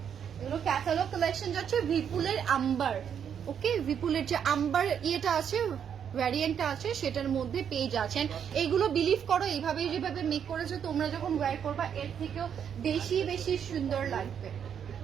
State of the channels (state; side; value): quieter; left; 8.2 dB